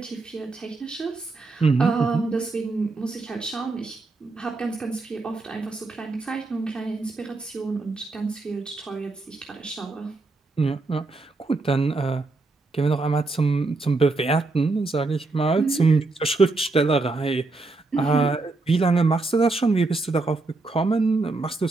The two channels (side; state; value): left; quieter; 3.5 dB